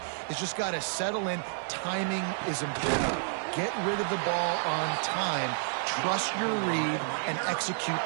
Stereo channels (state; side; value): silent; left; digital silence